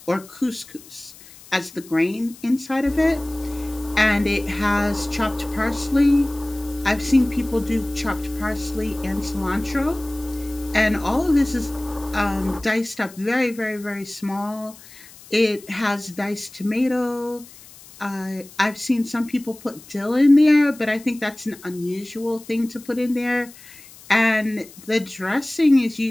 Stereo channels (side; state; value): left; noise; hiss, 21 dB below the sound